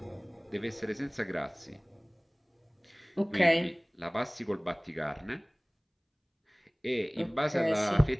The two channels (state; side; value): identical; both; correlation 1.00